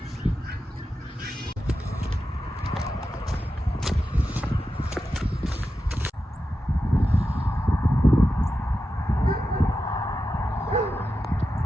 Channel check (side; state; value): both; normal; correlation 0.90